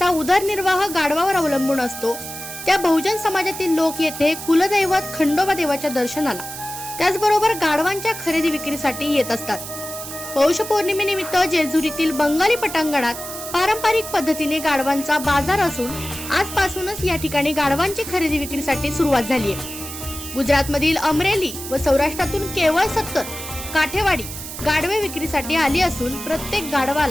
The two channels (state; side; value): noise; right; hiss, 10 dB below the sound